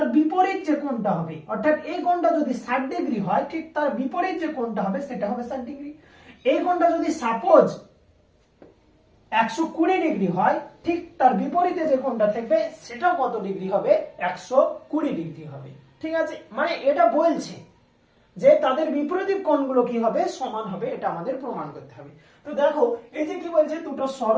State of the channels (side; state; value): both; identical; correlation 1.00